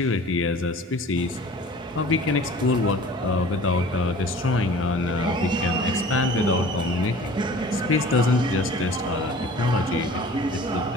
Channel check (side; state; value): both; normal; correlation 0.45